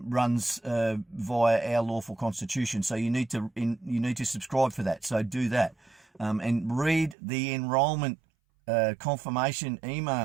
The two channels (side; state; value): left; drops out; at 7.2 s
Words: via our lawful constitution. So you need to subscribe for that. So do that, and read the enrollment confirmation